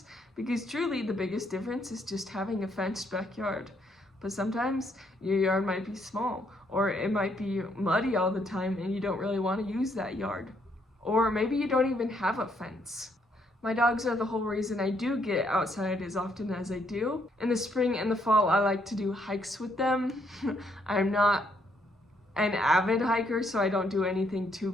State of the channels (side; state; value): both; normal; correlation 0.72